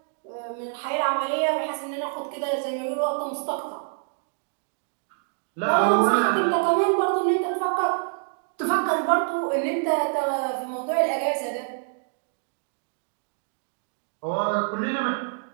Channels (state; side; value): silent; left; digital silence